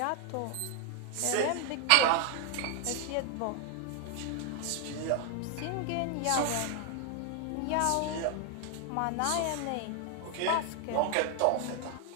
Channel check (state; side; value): different; both; correlation 0.00